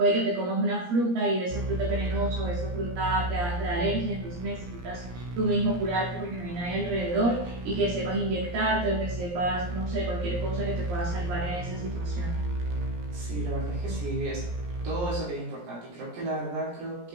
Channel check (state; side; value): late; left; 17 ms